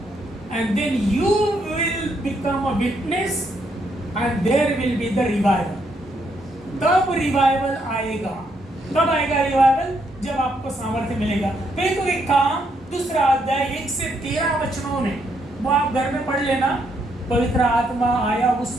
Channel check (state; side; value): normal; both; correlation 0.75